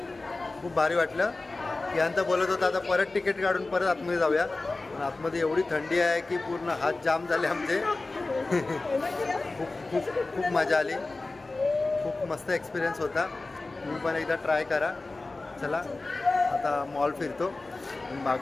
खूप भारी वाटलं. की बोलत होता आता परत तिकीट काढून परत आतमध्ये जाऊया. पण आतमध्ये एवढी थंडी आहे की पूर्ण हात जाम झाले आमचे. खूप खूप खूप मजा आली. खूप मस्त एक्सपिरियन्स होता. तुम्ही पण एकदा ट्राय करा. चला आता मॉल फिरतो.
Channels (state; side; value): quieter; right; 3.3 dB